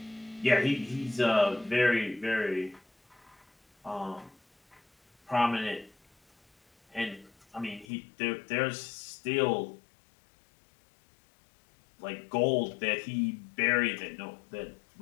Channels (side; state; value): right; drops out; at 7.9 s